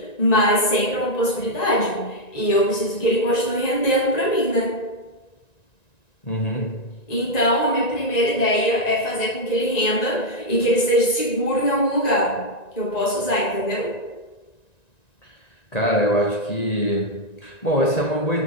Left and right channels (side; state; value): right; late; 1.9 ms